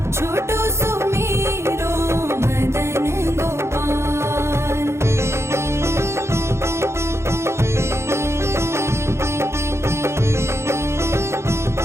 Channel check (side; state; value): left; late; 0.13 ms